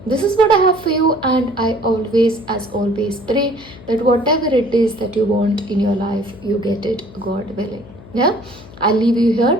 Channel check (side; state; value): left; noise; hum, 19 dB below the sound